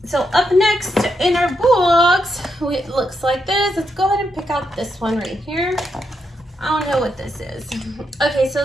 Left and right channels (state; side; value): normal; both; correlation 0.81